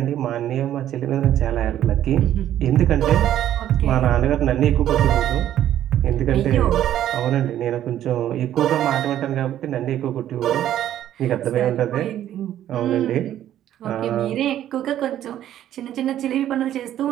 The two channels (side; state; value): left; quieter; 11.7 dB